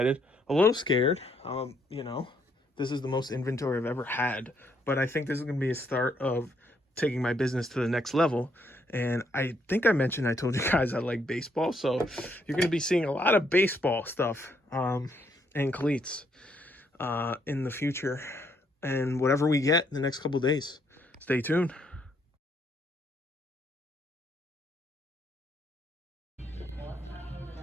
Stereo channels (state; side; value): normal; both; correlation 0.72